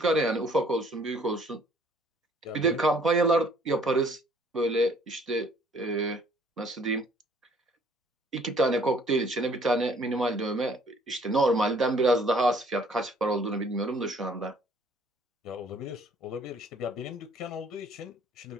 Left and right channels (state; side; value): normal; both; correlation 0.59